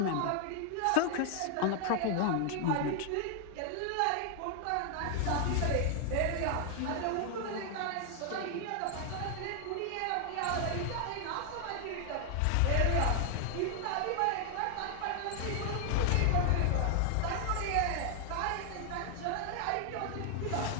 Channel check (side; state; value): both; different; correlation 0.00